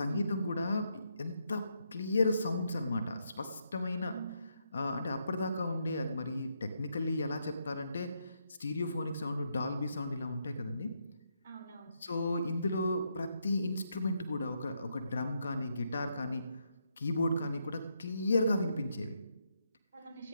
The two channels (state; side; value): inverted; both; correlation -0.79